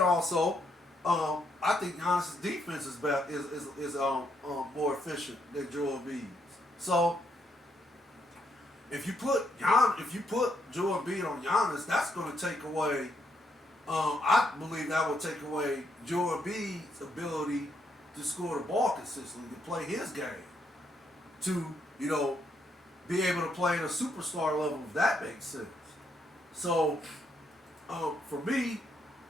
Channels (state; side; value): normal; both; correlation 0.75